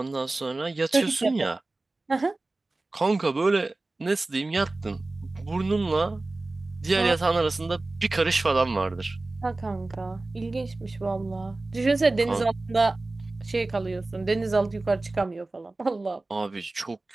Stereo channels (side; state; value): left; quieter; 3.1 dB